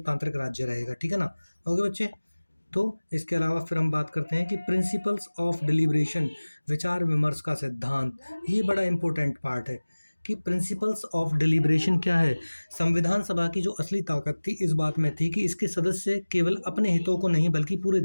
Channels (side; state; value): both; inverted; correlation -1.00